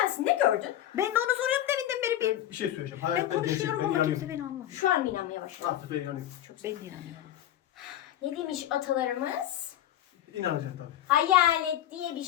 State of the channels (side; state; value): right; quieter; 12.3 dB